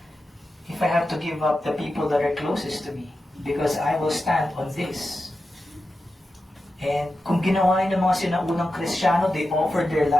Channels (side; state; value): both; normal; correlation 0.91